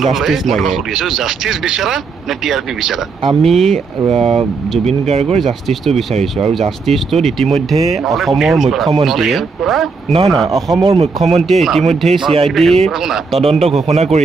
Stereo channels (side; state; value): left; quieter; 4.6 dB